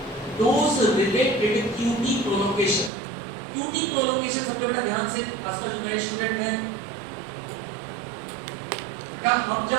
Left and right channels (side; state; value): left; drops out; at 2.9 s